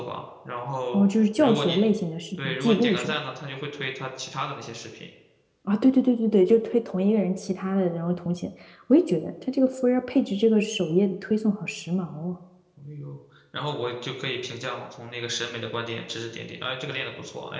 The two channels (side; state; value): both; identical; correlation 1.00